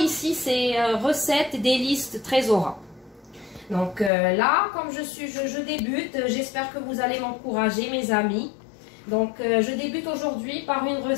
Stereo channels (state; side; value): drops out; right; at 4.1 s